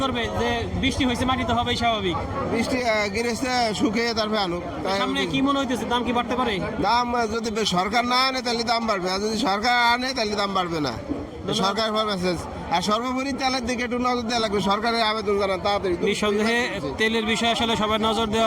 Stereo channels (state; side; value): identical; both; correlation 1.00